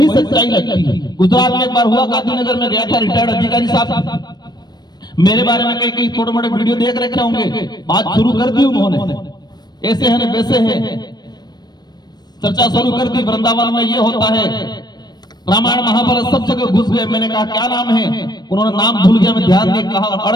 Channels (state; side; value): late; right; 0.20 ms